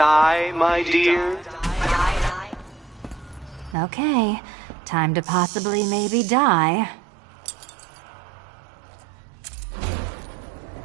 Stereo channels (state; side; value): drops out; left; at 3.8 s